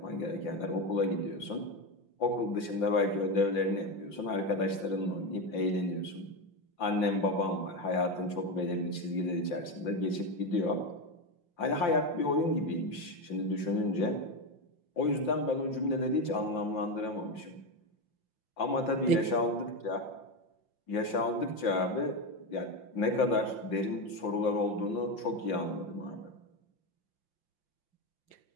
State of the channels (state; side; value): late; right; 5.7 ms